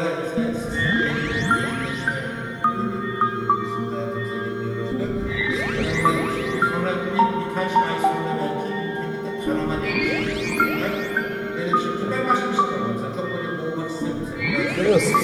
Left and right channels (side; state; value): both; identical; correlation 1.00